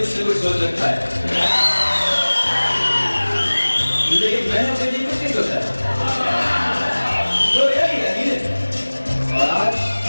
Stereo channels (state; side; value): inverted; both; correlation -1.00